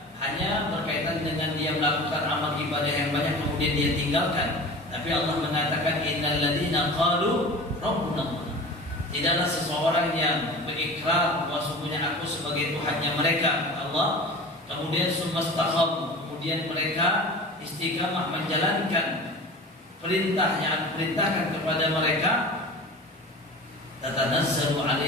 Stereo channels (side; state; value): both; normal; correlation 0.36